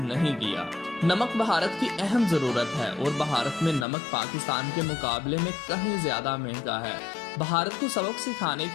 नहीं किया। नमक भारत की अहम जरूरत है और भारत में नमक पाकिस्तान के मुकाबले में कहीं ज्यादा महंगा है। भारत को सबक सिखाने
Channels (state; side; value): drops out; right; at 3.9 s